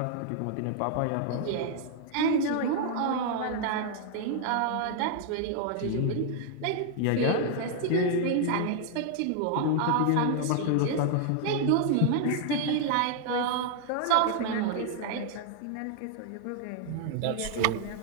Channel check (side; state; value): both; different; correlation 0.00